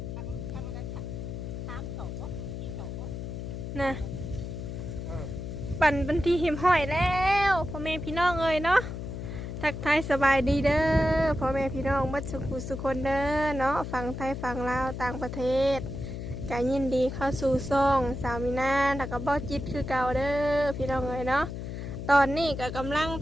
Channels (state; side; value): noise; left; hum, 6 dB below the sound